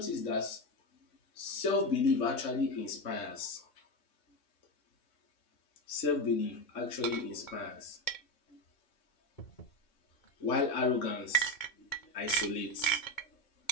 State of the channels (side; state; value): right; late; 3.5 ms